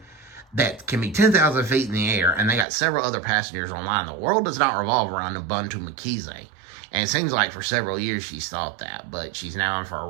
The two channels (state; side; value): drops out; left; at 2.7 s